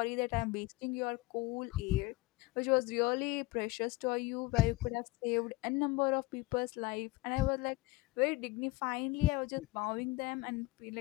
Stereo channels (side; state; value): right; quieter; 21.2 dB